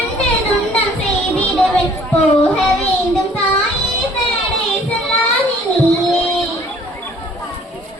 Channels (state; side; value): normal; both; correlation 0.56